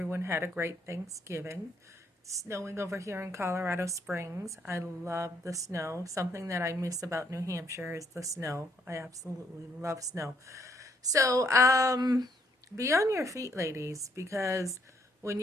had a great Thanksgiving. It's snowing over here in Colorado Springs. I love the snow. Something that I miss about New Hampshire is the snow. I absolutely love snow. So, be on your feet, ladies, because when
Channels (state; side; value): normal; both; correlation 0.70